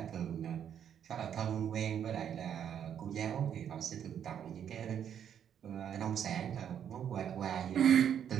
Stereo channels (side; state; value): left; quieter; 9.0 dB